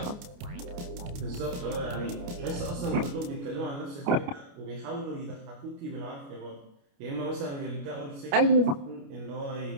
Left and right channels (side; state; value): left; late; 29 ms